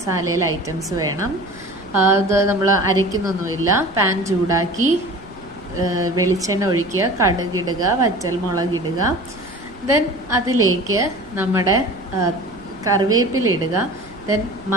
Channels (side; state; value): right; noise; rumble, 23 dB below the sound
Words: ഐറ്റംസ് വേണം. അത് നമ്മൾ അരയ്ക്കുന്നൊന്നുമില്ല. പാൻ ചൂടാക്കി വെളിച്ചെണ്ണ ഒഴിക്കുക, കടുകിടുക, വറ്റൽമുളകിടുക. ദെൻ അതിലേക്ക് നമ്മുടെ കറിവേപ്പില ഇടുക. ദെൻ